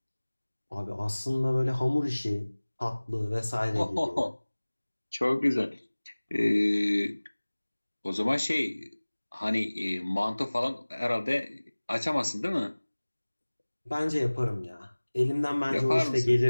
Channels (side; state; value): both; inverted; correlation -1.00